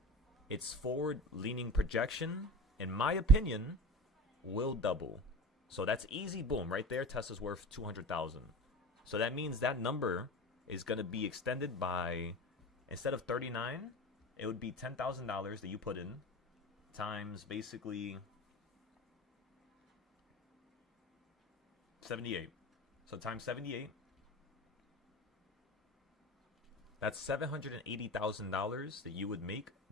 its forward-leaning projection, in my opinion, will double. So that's easy, boom, right there. Tesla's worth 200,000. So that means that number is going to be extended by, instead of 39, it would be $10,000 that you put in times basically 78. So times 78. That's $780,000 that you would make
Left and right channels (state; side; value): normal; both; correlation 0.32